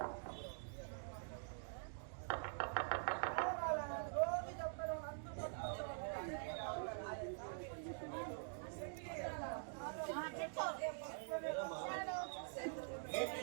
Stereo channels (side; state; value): left; silent; digital silence